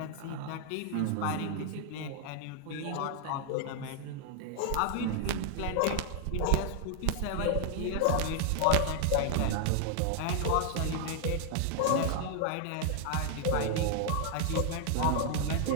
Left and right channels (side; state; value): both; different; correlation 0.00